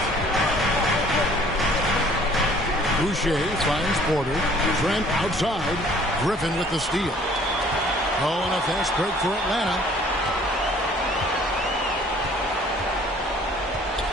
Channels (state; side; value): normal; both; correlation 0.56